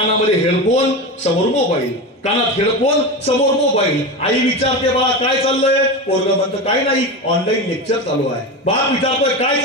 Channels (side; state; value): both; normal; correlation 0.22